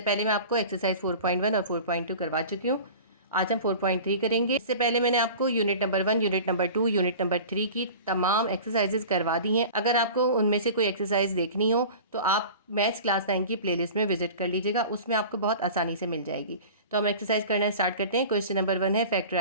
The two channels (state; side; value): inverted; both; correlation -0.39